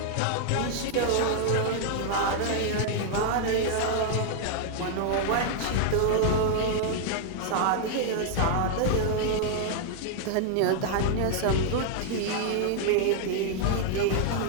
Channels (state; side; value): different; both; correlation 0.00